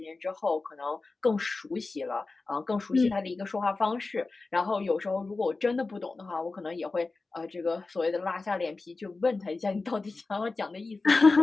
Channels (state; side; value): quieter; right; 3.7 dB